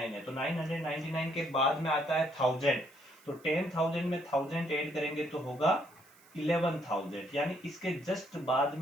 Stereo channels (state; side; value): noise; right; hiss, 27 dB below the sound